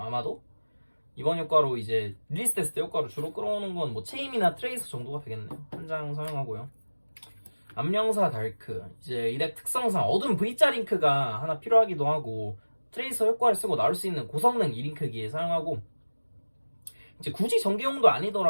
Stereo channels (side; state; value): both; inverted; correlation -1.00